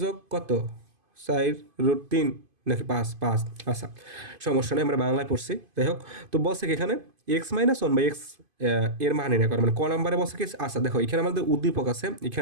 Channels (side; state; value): left; late; 2.5 ms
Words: যোগ কত 4√3 নাকি 5 আচ্ছা, সমস্যা নেই, আমরা বাংলায় পড়ছি। যাই হোক, তো বলছে কি এখানে x minus one by x এর মান নির্ণয় করে, মানে ক নাম্বারে বলছে কি। আচ্ছা দেখো, এখানে আমাদের উদ্দীপক আছে,